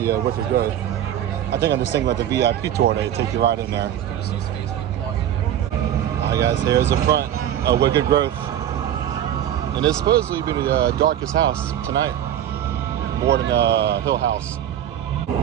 Wicked Growth. I think I'm just thinking about the VIP tour. They take you right in there. Alright guys, here's the front of Wicked Growth. And it's supposedly be the darkest house tonight. More than Hill House.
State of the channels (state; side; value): quieter; left; 10.9 dB